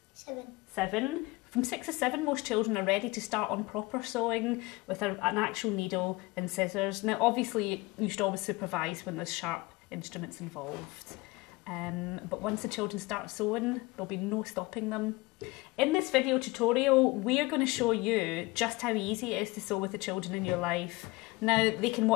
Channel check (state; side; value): quieter; right; 22.8 dB